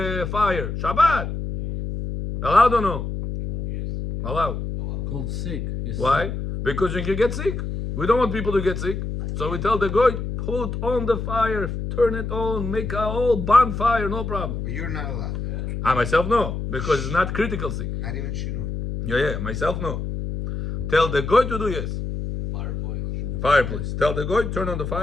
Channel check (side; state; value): left; noise; hum, 4 dB below the sound